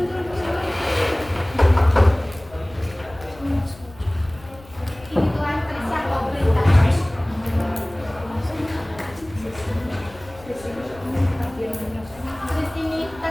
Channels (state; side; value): noise; left; rumble, 21 dB below the sound